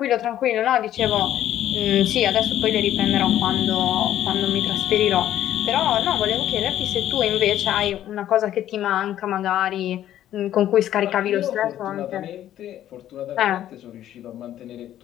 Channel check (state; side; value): quieter; right; 12.0 dB